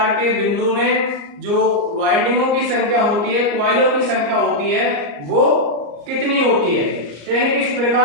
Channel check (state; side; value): late; left; 34 ms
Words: के बिंदु में जो वाइंडिंगों की संख्या होती है, कॉइलों की संख्या होती है, वो कितनी होती है। तो यानी कि इस